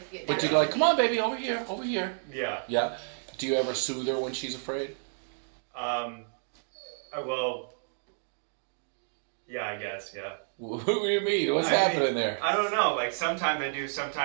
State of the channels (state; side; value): silent; left; digital silence